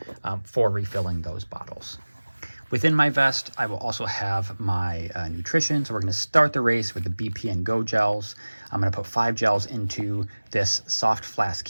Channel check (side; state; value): both; inverted; correlation -1.00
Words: for refilling those bottles. Within my vest, I will also have my nutrition. So we're going to start the race with the BPN Go gels. I'm going to put 5 gels into this soft flask